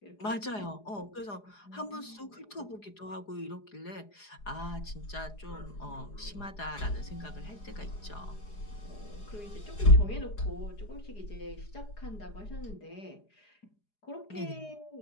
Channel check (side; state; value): right; late; 4.8 ms